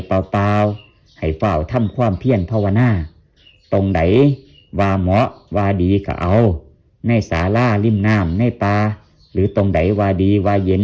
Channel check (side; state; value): both; identical; correlation 1.00